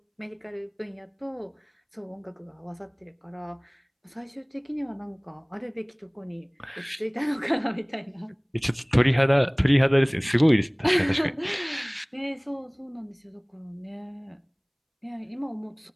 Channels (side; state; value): both; identical; correlation 1.00